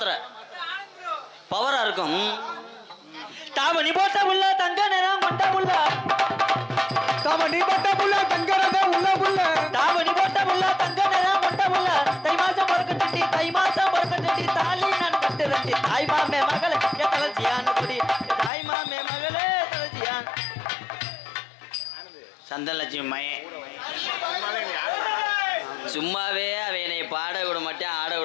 பவரா இருக்கும். தாமணி போட்ட உள்ள தங்க நேரம் கொண்ட உள்ள தாமணி போட்ட புள்ள தங்கறத உள்ள புள்ள தாமணி போட்ட உள்ள தங்க நேரம் கொண்ட உள்ள தை மாசம் பொறுக்கட்டி தாலி நான் கட்டுறேன் தாய் மாமே மகளே தலச்சியான் குடி தாய் மாமே மகளே தலச்சியான். சந்தனலட்சுமி மையன் சும்மாவே அவனை பாட விட மாட்டான் ஆட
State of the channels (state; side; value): drops out; right; at 18.5 s